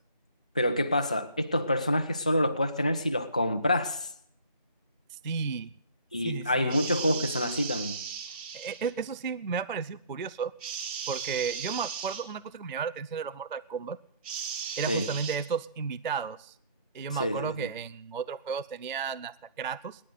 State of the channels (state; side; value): inverted; both; correlation -0.53